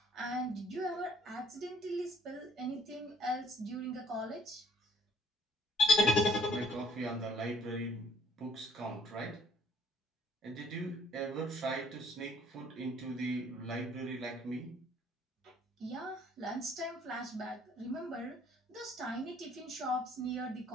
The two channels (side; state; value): both; normal; correlation 0.62